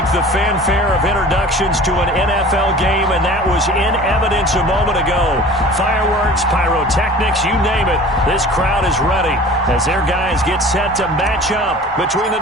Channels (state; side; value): normal; both; correlation 0.42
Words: the fanfare of introductions to an NFL game, and that was in evidence a moment ago. Fireworks, pyrotechnics, you name it. This crowd is ready as their guys get set to match up between the